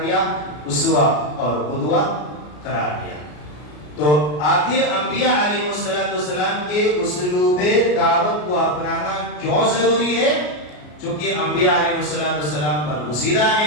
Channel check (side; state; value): right; late; 33 ms